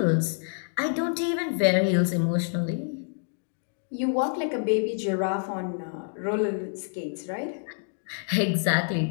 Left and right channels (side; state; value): right; silent; digital silence